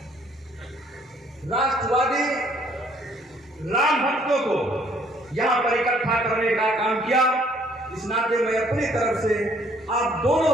राष्ट्रवादी राम भक्तों को यहाँ पर इकट्ठा करने का काम किया। इस नाते मैं अपनी तरफ से आप दोनों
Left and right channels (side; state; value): both; normal; correlation 0.62